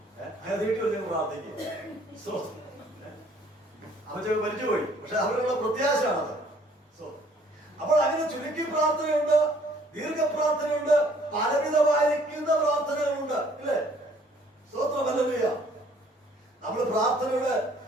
അങ്ങനെ വീട്ടിൽ വന്ന് പ്രാർത്ഥിക്കും. അമ്മച്ചൊക്കെ മരിച്ചുപോയി, പക്ഷെ അവരുടെ പ്രത്യാശയാണത്. അപ്പോൾ അങ്ങനെ ചുരുക്കി പ്രാർത്ഥനയുണ്ട്, ദീർഘപ്രാർത്ഥനയുണ്ട്, പലവിധമായിരിക്കുന്ന പ്രാർത്ഥനകളുണ്ട്, ഇല്ലേ? സ്തോത്രം. ഹല്ലേലൂയ. നമ്മൾ പ്രാർത്ഥനയുടെ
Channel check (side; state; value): both; normal; correlation 0.59